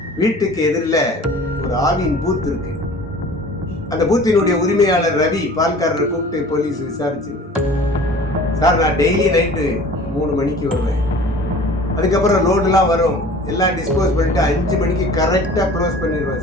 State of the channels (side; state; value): both; normal; correlation 0.45